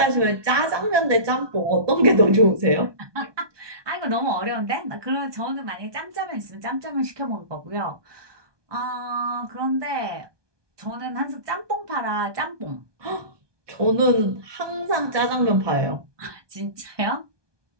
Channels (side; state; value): left; late; 1.2 ms